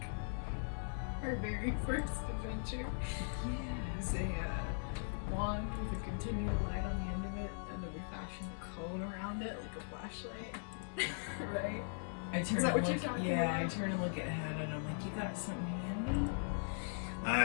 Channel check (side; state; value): right; silent; digital silence